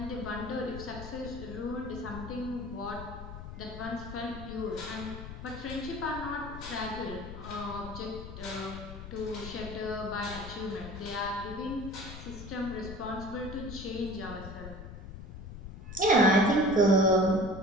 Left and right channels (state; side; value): noise; left; rumble, 11 dB below the sound